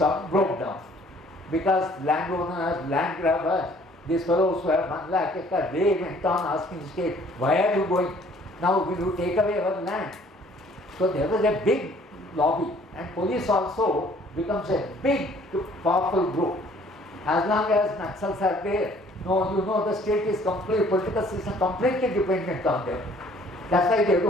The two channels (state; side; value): normal; both; correlation 0.57